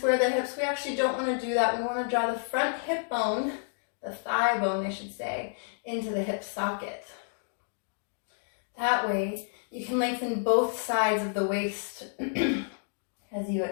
the hips. We actually don't want to do that. We want to draw the front hip bone, the thigh bone I should say, into the hip socket. That way you can lengthen both sides of the waist as you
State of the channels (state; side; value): silent; right; digital silence